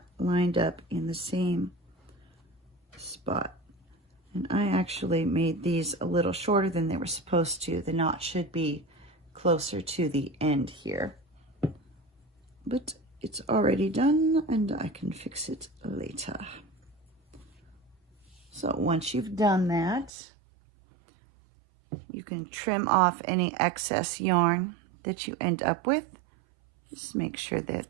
lined up in the same spot. And I actually made these a little shorter than they were supposed to. The knot should be closer to the end here. But it's already done and I can fix it later. So once you've done that, you can trim off any excess yarn that you end up with. Just make sure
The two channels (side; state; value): left; drops out; at 20.1 s